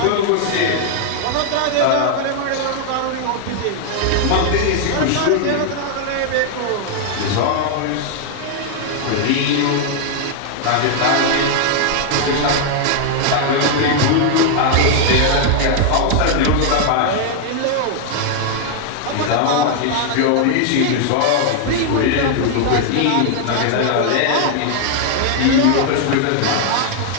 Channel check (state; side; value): different; both; correlation 0.00